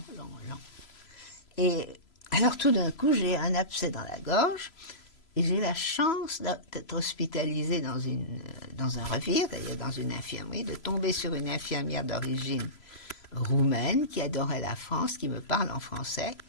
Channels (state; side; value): late; right; 3.0 ms